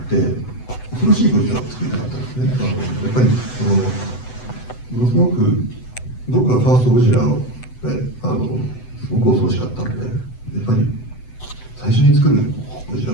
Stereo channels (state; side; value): late; right; 8.0 ms